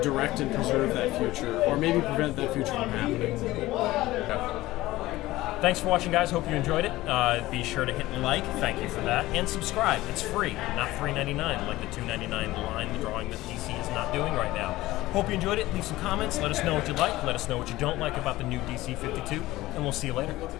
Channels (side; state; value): right; quieter; 17.6 dB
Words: direct and preserve that future, or maybe prevent that future from happening. Thanks for watching, guys. Hope you enjoyed it. Be sure to hit like, thank you for that, and subscribe. It's free, not $3.99 like the $2.99 line drawing that DC is not doing right now. Hope you enjoyed it. Leave some comments. Let us know what you like. Let us know what you don't like about the new DC 52, and we'll see you later.